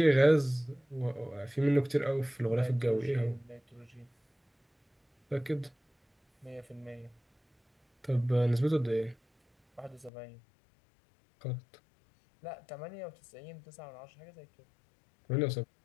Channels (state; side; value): drops out; right; at 10.1 s